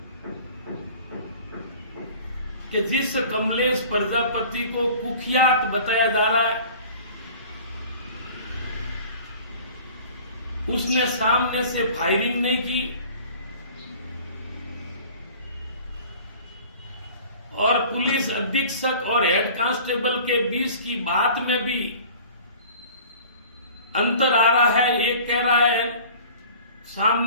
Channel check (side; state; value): both; inverted; correlation -0.45